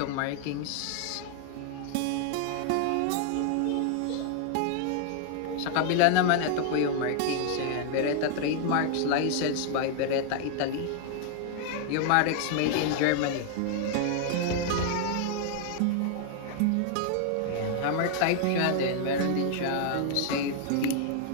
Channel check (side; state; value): both; different; correlation 0.00